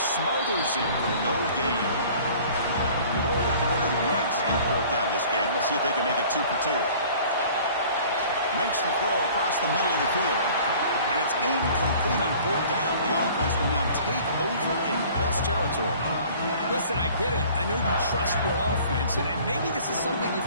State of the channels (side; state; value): both; inverted; correlation -0.49